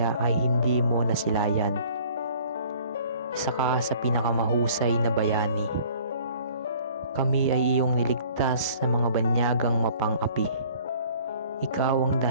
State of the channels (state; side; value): inverted; both; correlation -0.52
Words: ay hindi mo nasilayan. Isa ka sa pinakamahusay na bayani. Kami ay iyong niligtas sa mga banyagang mapang-api. Ikaw ang